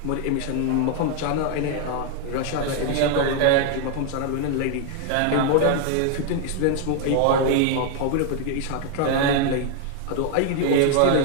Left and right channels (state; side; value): different; both; correlation 0.00